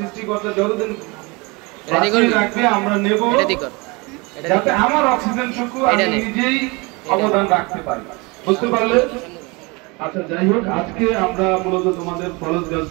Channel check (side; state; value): left; quieter; 27.0 dB